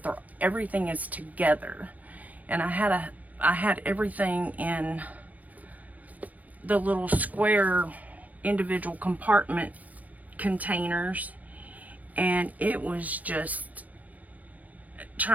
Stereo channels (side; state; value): left; late; 0.077 ms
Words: everything is together. And I had everything in the little square individual compartment containers, and it was just